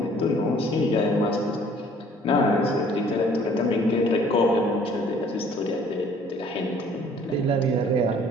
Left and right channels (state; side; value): normal; both; correlation 0.56